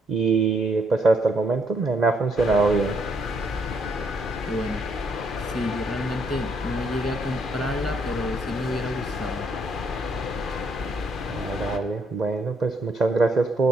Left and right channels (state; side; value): normal; both; correlation 0.72